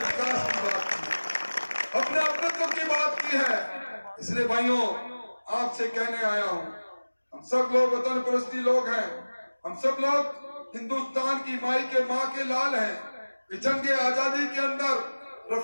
की बात की, अपने अपनत्व की बात की है। इसलिए भाइयों आपसे कहने आया हूं, हम सब लोग वतन परस्ती लोग हैं, हम सब लोग हिंदुस्तान की माई के माँ के लाल हैं। जंग आजादी के अंदर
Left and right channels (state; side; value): inverted; both; correlation -1.00